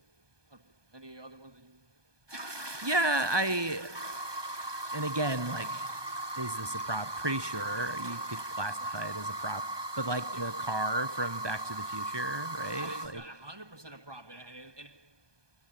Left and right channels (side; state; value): left; late; 1.2 ms